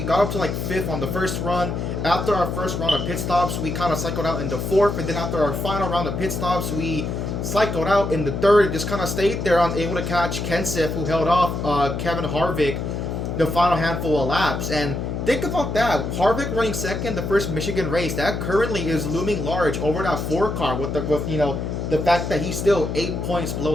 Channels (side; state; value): left; noise; hum, 3 dB below the sound